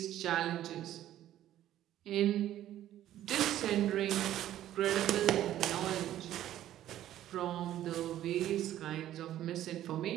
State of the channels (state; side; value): quieter; left; 12.6 dB